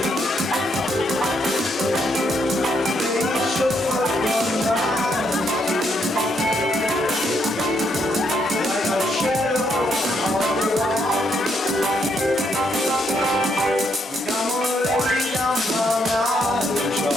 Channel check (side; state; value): both; normal; correlation 0.75